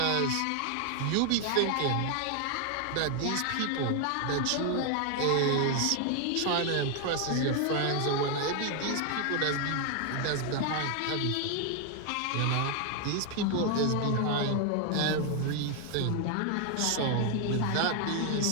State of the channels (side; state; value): both; different; correlation 0.00